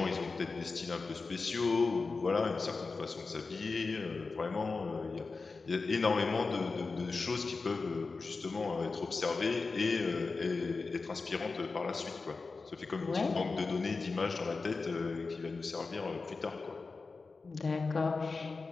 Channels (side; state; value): right; quieter; 4.1 dB